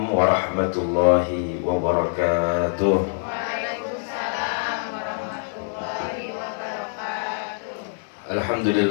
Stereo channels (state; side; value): silent; right; digital silence